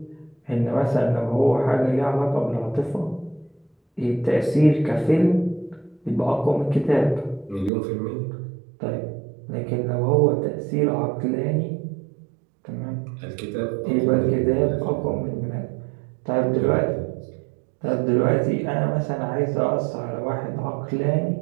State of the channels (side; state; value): left; drops out; at 7.7 s